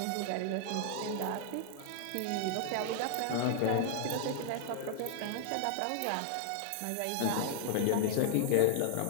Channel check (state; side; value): different; both; correlation 0.00